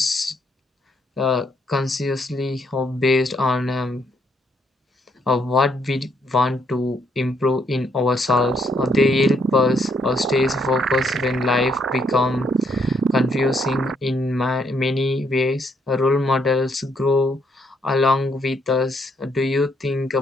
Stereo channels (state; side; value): normal; both; correlation 0.72